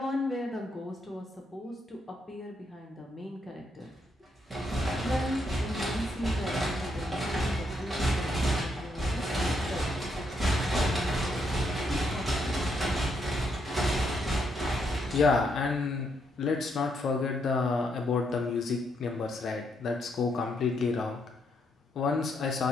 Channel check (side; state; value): both; normal; correlation 0.77